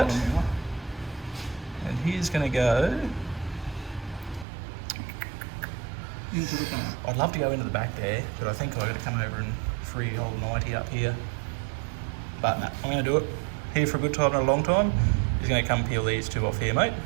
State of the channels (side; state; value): left; drops out; at 4.5 s